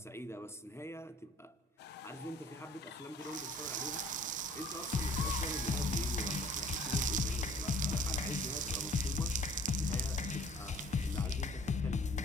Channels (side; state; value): both; normal; correlation 0.53